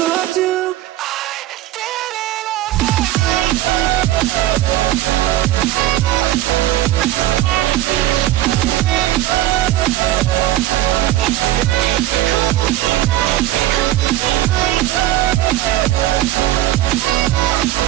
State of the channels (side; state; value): left; quieter; 14.8 dB